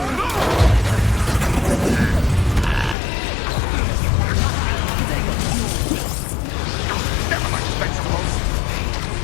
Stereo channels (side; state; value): right; drops out; at 3.0 s